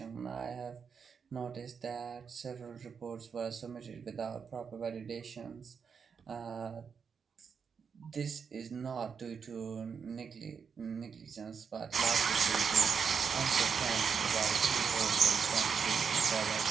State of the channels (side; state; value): left; quieter; 6.3 dB